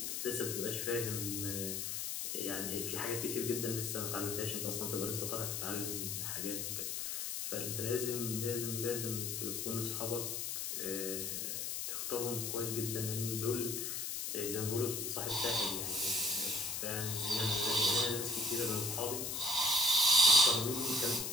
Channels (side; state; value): left; noise; hiss, 2 dB below the sound